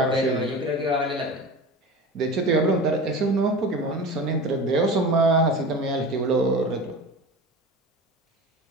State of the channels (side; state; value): both; normal; correlation 0.32